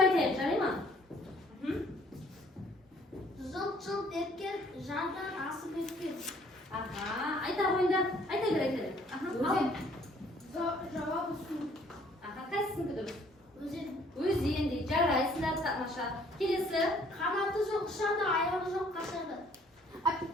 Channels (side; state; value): both; normal; correlation 0.60